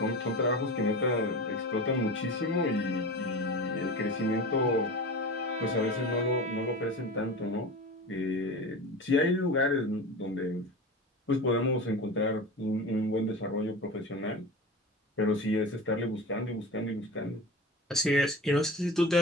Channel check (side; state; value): both; normal; correlation 0.30